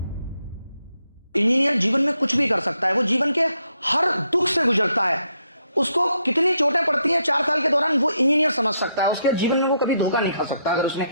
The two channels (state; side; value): inverted; both; correlation -0.77